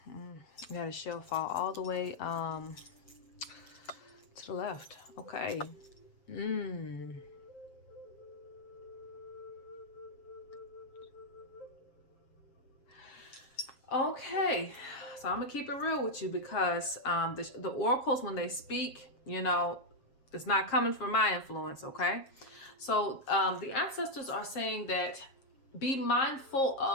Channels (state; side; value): late; right; 7.3 ms